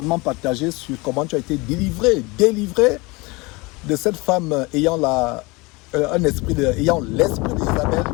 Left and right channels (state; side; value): quieter; right; 25.1 dB